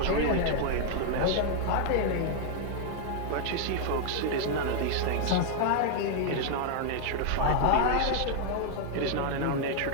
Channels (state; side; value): different; both; correlation 0.00